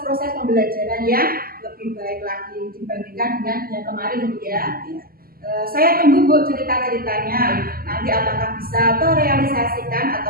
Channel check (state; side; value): late; left; 0.42 ms